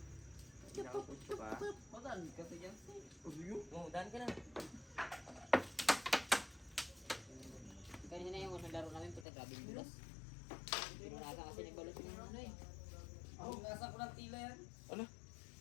Gago ka. Magaan kasi yan. Oo, daan ka na. kanina yung unang laro namin, puta grabe yung bulas. Pinunasan kasi ni Balot yung ano eh. Ang nasa ko ng tila yan. Ano?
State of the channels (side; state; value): right; drops out; at 9.2 s